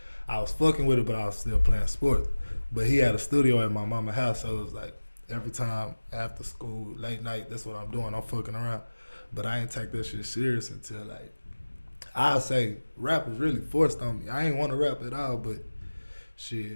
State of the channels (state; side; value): inverted; both; correlation -1.00